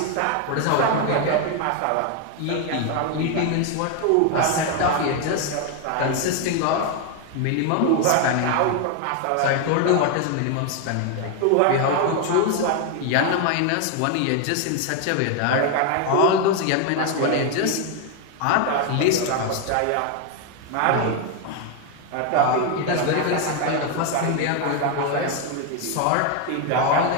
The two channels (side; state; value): both; different; correlation 0.01